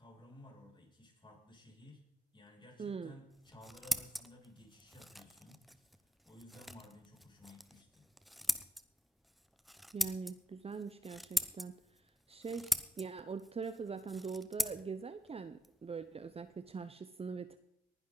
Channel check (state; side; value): normal; both; correlation 0.88